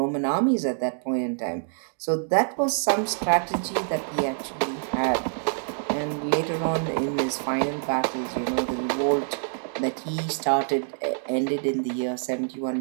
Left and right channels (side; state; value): left; silent; digital silence